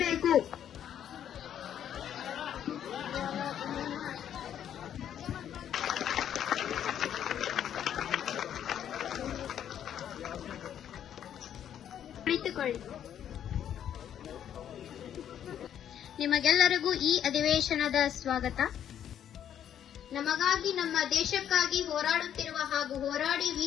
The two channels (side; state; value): right; quieter; 9.8 dB